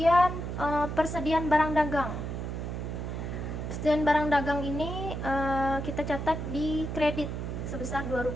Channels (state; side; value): noise; right; hum, 4 dB below the sound